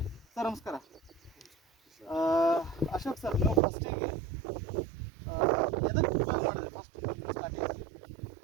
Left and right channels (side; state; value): left; drops out; at 3.6 s